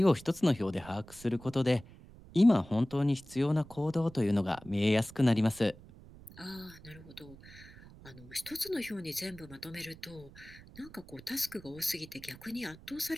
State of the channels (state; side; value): noise; right; rumble, 20 dB below the sound